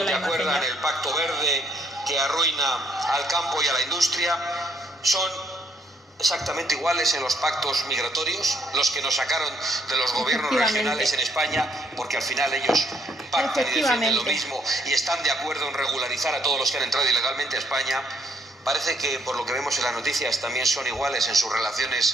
la imagen. ¿Acuerdan el Pacto Verde que arruina al campo y a la industria? Son exactamente iguales en los pactos migratorios, los que nos sacaron de los gobiernos regionales en España, porque al final ellos pactan y defienden lo mismo y están de acuerdo en regularizar a todos los que han entrado ilegalmente a España. Parece que, por lo que vemos en las noticias, también son iguales en sus relaciones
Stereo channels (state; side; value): normal; both; correlation 0.69